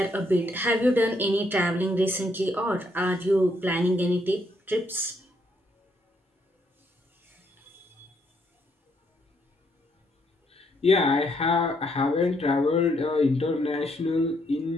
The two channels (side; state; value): both; normal; correlation 0.73